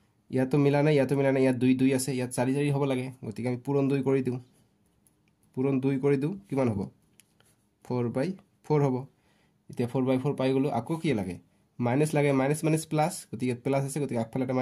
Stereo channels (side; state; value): both; identical; correlation 1.00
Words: ইয়াতো মিলা নাই ইয়াতো মিলা নাই ইয়াত 2 2 আছে ইয়াত 4 4 হ'ব লাগে গতিকে আমি পূৰণ 2 কৰি দিওঁ পূৰণ 2 কৰি দিওঁ কিমান হ'ব 4/4 হ'ব এতিয়া 4/4 পাই গলো আকৌ কি লাগে মাইনাস লাগে মাইনাস মাইনাস প্লাস গতিকে প্লাস আছে গতিকে আগফালে এটা